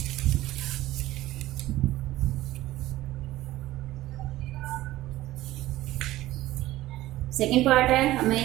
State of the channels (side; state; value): left; quieter; 16.0 dB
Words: सेकंड पार्ट है,